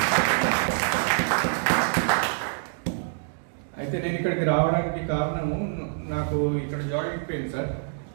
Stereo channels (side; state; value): left; silent; digital silence